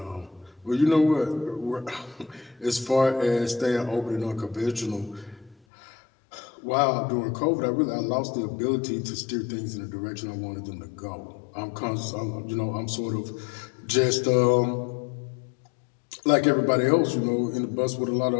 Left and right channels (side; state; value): right; drops out; at 5.6 s